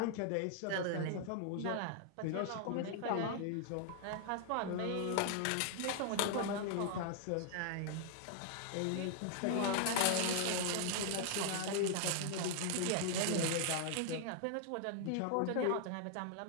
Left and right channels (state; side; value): different; both; correlation 0.00